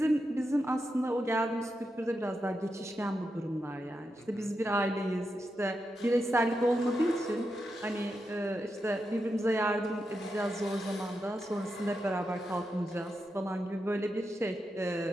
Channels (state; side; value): normal; both; correlation 0.87